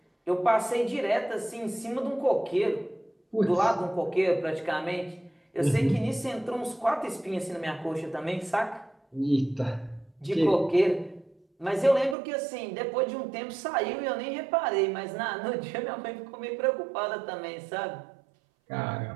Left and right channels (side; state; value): left; drops out; at 12.2 s